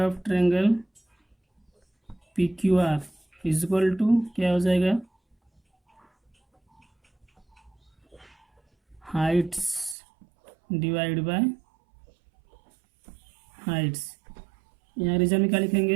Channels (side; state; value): left; drops out; at 10.0 s